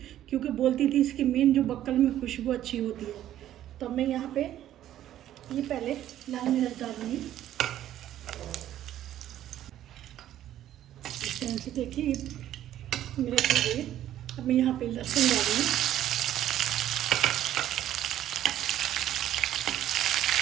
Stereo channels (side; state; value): left; quieter; 12.2 dB